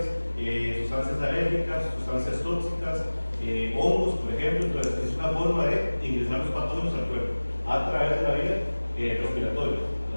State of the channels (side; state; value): both; inverted; correlation -1.00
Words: sustancias alérgicas, sustancias tóxicas, hongos, por ejemplo. Entonces, es una forma de ingresar los patógenos al cuerpo a través de la vía respiratoria,